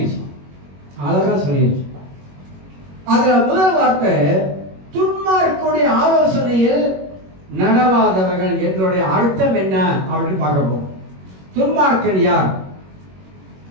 அதுல முதல் வார்த்தை துன்மார்க்கனுடைய ஆலோசனையில் நடவாதவர்கள் என்னுடைய அர்த்தம் என்ன அப்படின்னு பார்க்க போறோம். துன்மார்க்கன் யார்?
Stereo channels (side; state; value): left; late; 21 ms